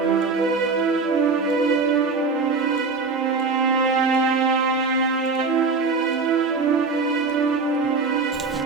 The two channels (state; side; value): quieter; left; 4.3 dB